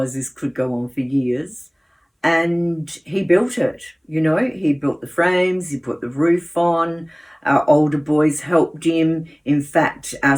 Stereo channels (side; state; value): both; identical; correlation 1.00